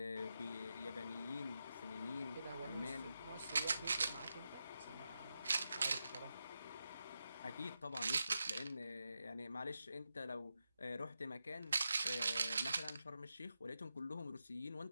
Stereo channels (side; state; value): both; inverted; correlation -0.88